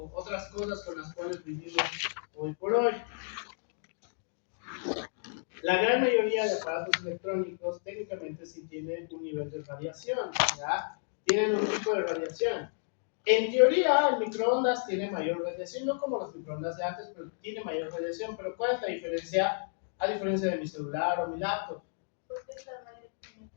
cosas con las cuales vivimos hoy por hoy. La gran mayoría de aparatos electrónicos técnicamente sí tienen un nivel de radiación, ¿ya? Tienen un tipo de radiación. En teoría, el microondas tiene mayor radiación, no como los microondas de antes, pero tiene mayor radiación. Pero ¿cuál es la diferencia? A diferencia de mi celular o mi laptop.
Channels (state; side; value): silent; right; digital silence